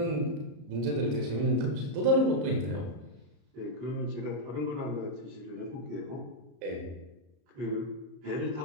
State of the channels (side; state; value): left; late; 34 ms